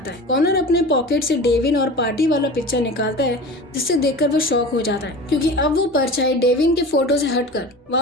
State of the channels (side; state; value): both; normal; correlation 0.35